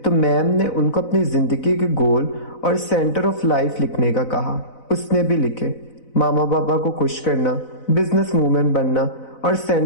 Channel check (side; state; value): right; late; 4.0 ms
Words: تو میم نے ان کو اپنی زندگی کے گول اور سینٹر آف لائف لکھنے کا کہا۔ اس نے بھی لکھے، ماما پاپا کو خوش کرنا، بزنس وومن بننا، اور